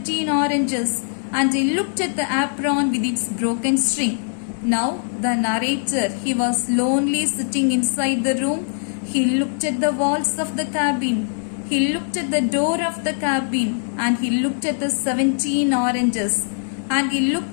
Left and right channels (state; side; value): silent; right; 65 dB below the other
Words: oranges, and I looked at the apron with its broken string. Now the narrator, he was lonely sitting inside the room. He looked at the walls of the cabin. He looked at the door of the cabin and he looked at the 17 oranges and he